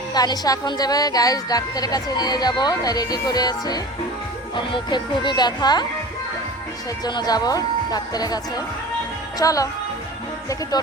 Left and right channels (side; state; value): both; normal; correlation 0.37